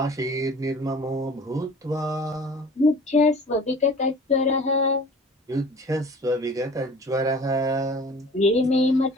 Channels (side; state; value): both; normal; correlation 0.45